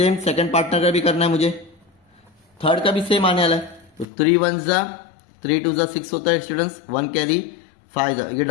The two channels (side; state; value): right; drops out; at 4.0 s